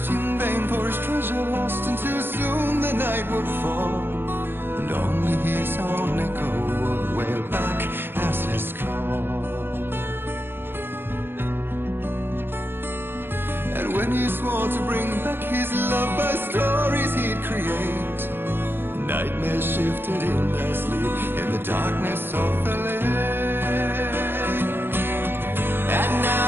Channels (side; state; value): left; late; 0.10 ms